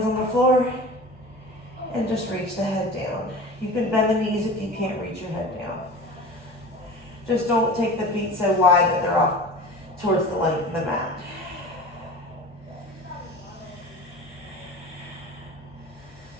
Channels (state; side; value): normal; both; correlation 0.36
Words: on the floor and just reach the head down. You can bend the knees if you can't reach your head down. Just don't take the feet so wide that they're off towards the length of the mat.